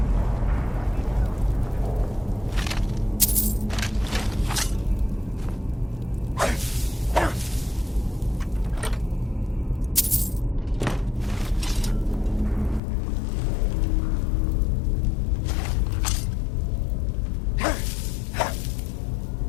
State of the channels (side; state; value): right; drops out; at 12.8 s